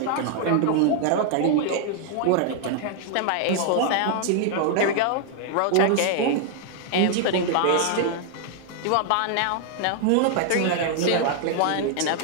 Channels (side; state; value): both; different; correlation 0.00